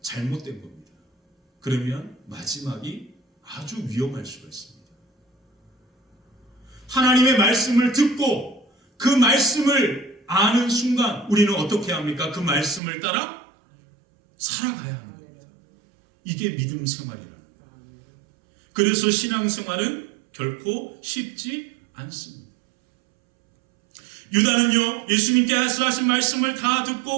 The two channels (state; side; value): drops out; left; at 12.8 s